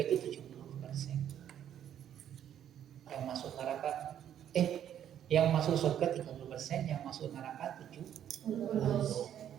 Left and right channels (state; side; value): quieter; left; 10.1 dB